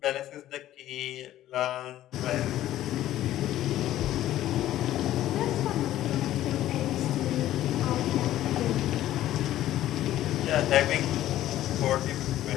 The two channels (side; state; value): right; quieter; 13.5 dB